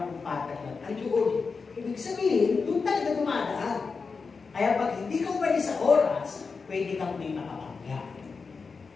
kung patak lang, ang doon. Ibig sabihin, doon talaga dumadaan. Kaya pag hindi ka umalis sa oras, pwede kang may makapangga.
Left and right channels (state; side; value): quieter; right; 4.8 dB